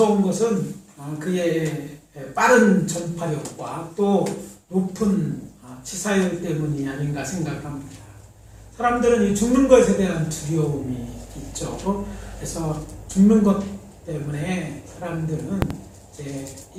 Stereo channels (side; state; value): both; identical; correlation 1.00